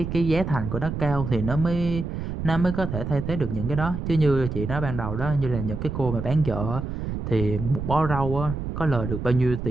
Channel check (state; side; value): noise; right; rumble, 5 dB below the sound